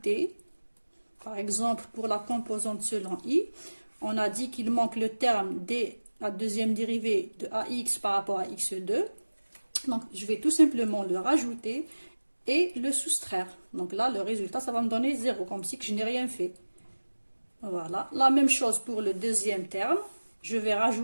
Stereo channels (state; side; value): inverted; both; correlation -1.00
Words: par exemple pour la composante selon I, on a dit qu'il manque le terme de la deuxième dérivée de AX par rapport à X2. Donc je vais tout simplement le rajouter et le soustraire. Donc là, le résultat, ça va me donner 0, comme si je n'ai rien fait. Voilà, la même chose pour le deuxième terme. Je vais